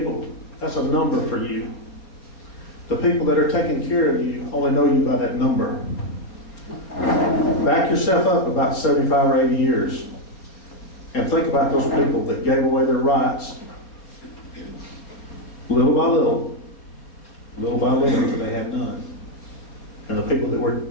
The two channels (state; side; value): late; right; 4.4 ms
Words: That's a number for you. The people that are taking care of you only know you by that number. Back yourself up about 75 or 80 years and think about those people that gave away their rights little by little until they had none. And the people that were